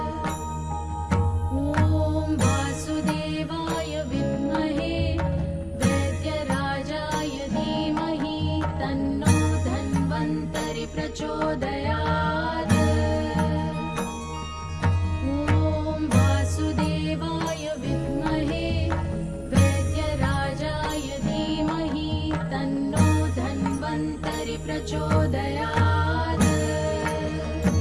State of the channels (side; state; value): both; identical; correlation 1.00